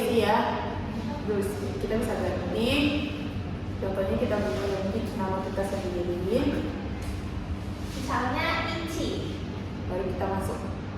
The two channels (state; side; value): identical; both; correlation 1.00